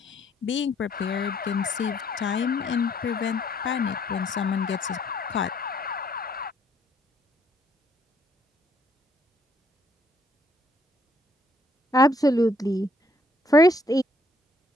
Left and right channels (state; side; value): normal; both; correlation 0.67